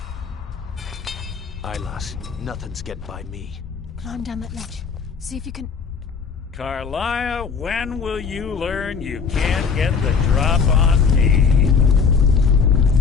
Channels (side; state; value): right; quieter; 5.8 dB